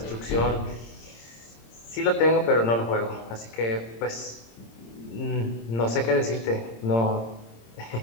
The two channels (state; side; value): late; right; 26 ms